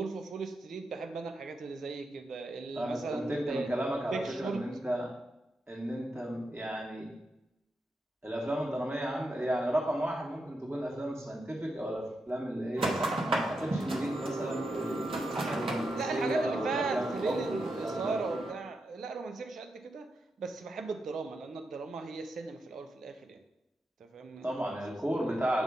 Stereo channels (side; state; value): both; normal; correlation 0.86